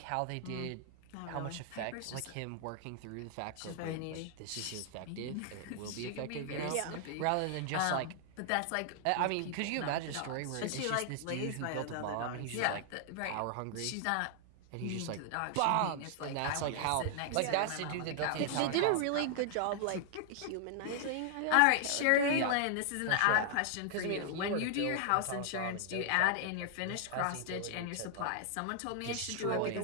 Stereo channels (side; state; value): both; different; correlation 0.00